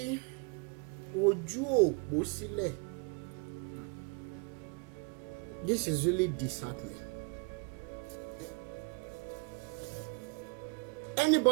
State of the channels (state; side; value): quieter; left; 32.5 dB